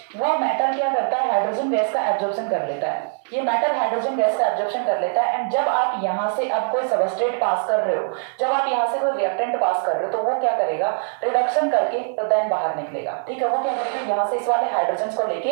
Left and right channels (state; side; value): silent; left; digital silence